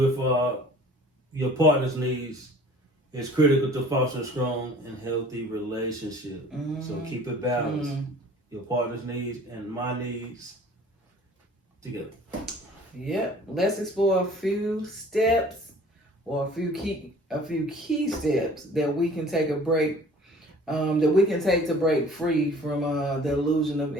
your partner's needs is critical to foster a strong and healthy relationship. So keep it balanced. Your partner's needs and my needs together. Yep. Let's explore a few steps or a few key steps that we can take to break free from the illusion of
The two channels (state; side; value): normal; both; correlation 0.49